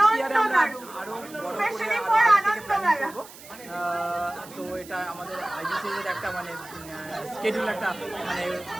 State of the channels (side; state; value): right; noise; hiss, 18 dB below the sound